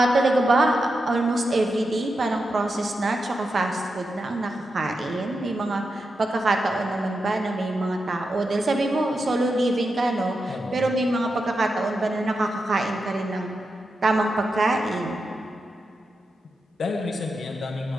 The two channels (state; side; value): normal; both; correlation 0.88